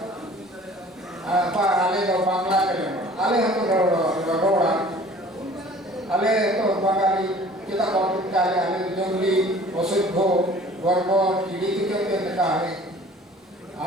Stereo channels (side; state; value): both; normal; correlation 0.48